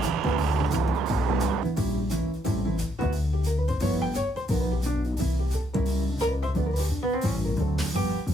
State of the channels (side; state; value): both; normal; correlation 0.75